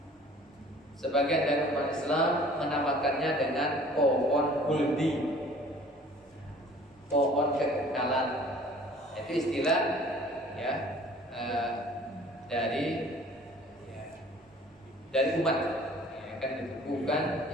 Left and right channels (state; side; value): normal; both; correlation 0.51